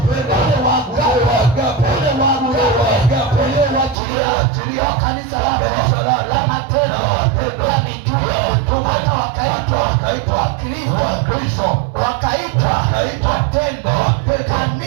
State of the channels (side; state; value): left; drops out; at 4.0 s